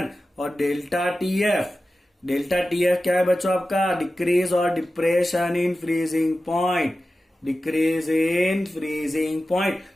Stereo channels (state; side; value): normal; both; correlation 0.94